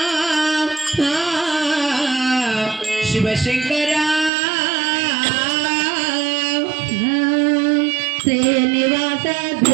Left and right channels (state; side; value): drops out; left; at 4.3 s